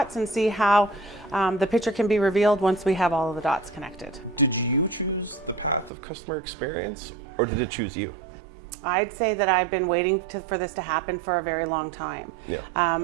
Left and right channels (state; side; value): drops out; left; at 5.9 s